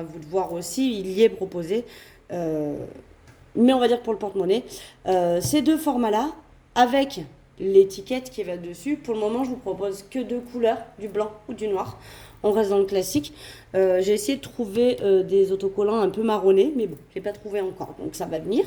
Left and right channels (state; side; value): identical; both; correlation 1.00